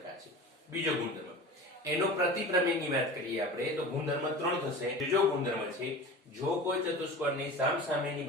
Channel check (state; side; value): normal; both; correlation 0.35